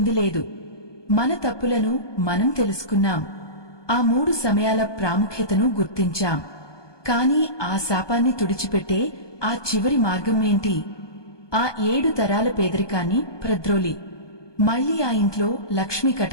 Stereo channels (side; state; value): right; late; 1.2 ms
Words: లేదు. మన తప్పులను మనం తెలుసుకున్నాం. ఆ 3 సమయాల ప్రాముఖ్యతను గుర్తించాం. కాని ఆ శాపాన్ని తుడిచిపెట్టే ఆ చివరి మార్గం ఏంటి? ఆ 7 తరాల పేదరికాన్ని ప్రద్రోలి మళ్లీ ఆ ఇంట్లో లక్ష్మీ